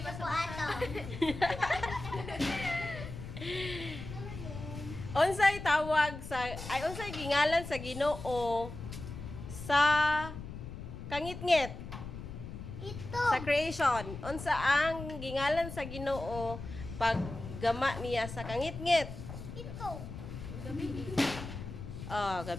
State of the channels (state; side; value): noise; left; rumble, 10 dB below the sound